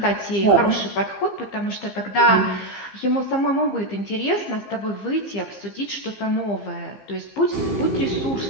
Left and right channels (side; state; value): right; late; 15 ms